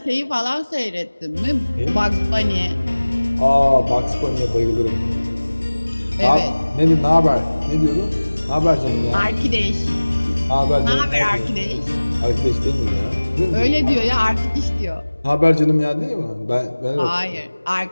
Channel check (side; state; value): both; inverted; correlation -1.00